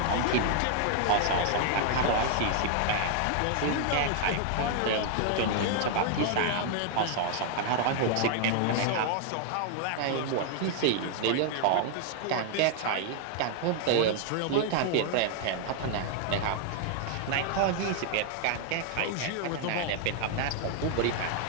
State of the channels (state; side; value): different; both; correlation 0.00